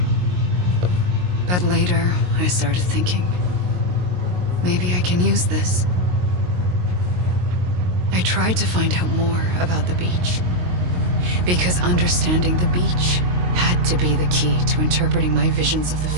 But later, I started thinking, maybe I can use this. I tried to find out more about the beach. Because understanding the beach had to be the key to interpreting my visions of the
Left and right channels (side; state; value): left; late; 22 ms